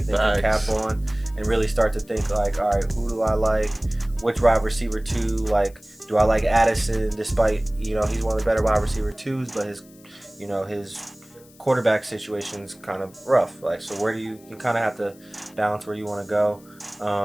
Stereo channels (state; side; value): noise; left; hiss, 26 dB below the sound